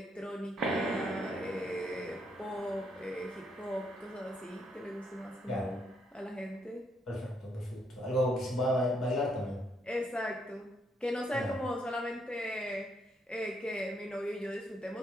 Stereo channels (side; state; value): both; normal; correlation 0.74